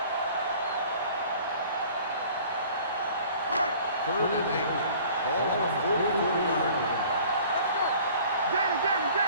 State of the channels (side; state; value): both; inverted; correlation -0.49